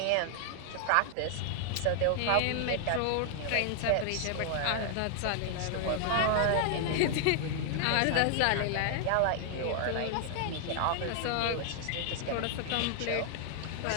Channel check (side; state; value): both; different; correlation 0.00